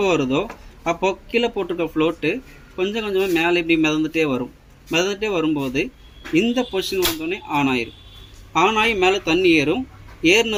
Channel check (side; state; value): both; identical; correlation 1.00